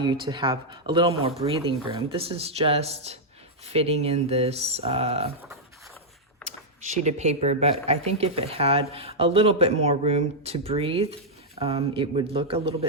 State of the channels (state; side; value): normal; both; correlation -0.05